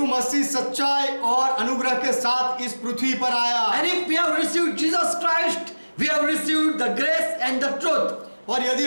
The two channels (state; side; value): inverted; both; correlation -1.00